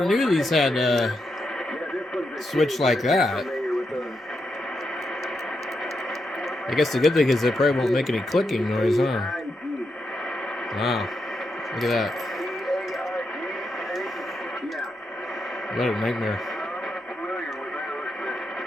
knew these had switch like that. I guess the good thing is they probably won't make any clicking noise, huh? Wow. Look at that. What a nightmare.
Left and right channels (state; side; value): normal; both; correlation 0.84